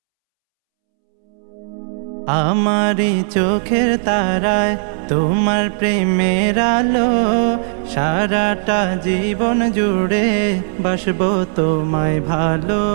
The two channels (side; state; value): left; silent; 68 dB below the other